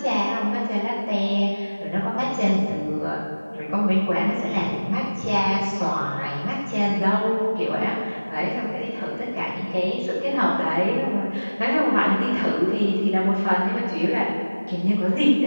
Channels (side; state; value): both; inverted; correlation -1.00